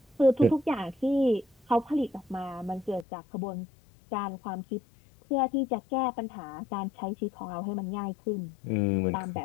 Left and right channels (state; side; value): drops out; right; at 3.1 s